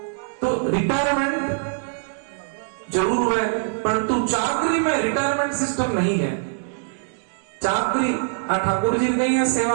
तो रिटायरमेंट जरूर है, परंतु चाकरी में रिटायरमेंट सिस्टम नहीं है। चाकरी ठाकुर जी नहीं है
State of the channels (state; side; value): silent; left; 63 dB below the other